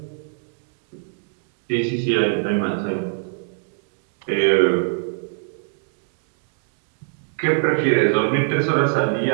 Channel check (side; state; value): left; silent; digital silence